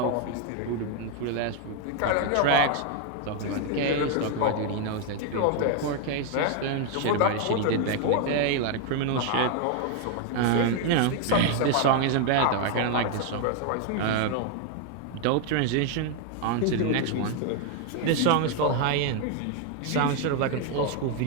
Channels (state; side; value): different; both; correlation 0.01